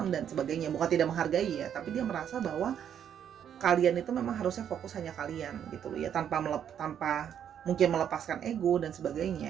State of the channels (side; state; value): left; quieter; 9.1 dB